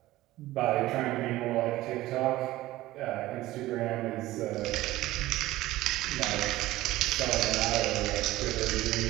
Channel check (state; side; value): quieter; left; 16.7 dB